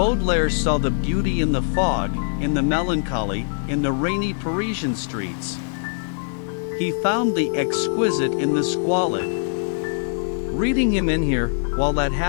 saw the beauty in the fog, in the melancholy, in the rainy Parisian streets. He found the exquisite in the squalid. Reading him in here, while that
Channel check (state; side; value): silent; right; digital silence